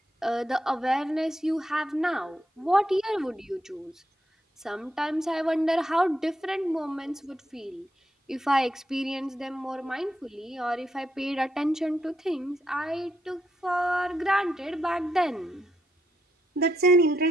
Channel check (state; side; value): normal; both; correlation 0.80